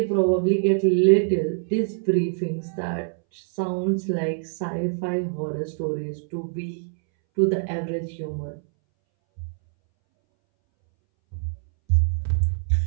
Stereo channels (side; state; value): left; silent; 62 dB below the other